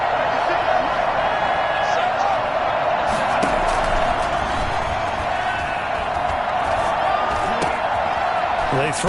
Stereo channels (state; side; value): identical; both; correlation 1.00